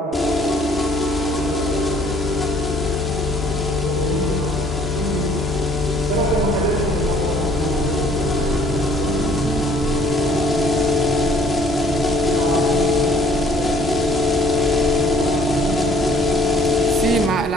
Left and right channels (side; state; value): both; normal; correlation 0.59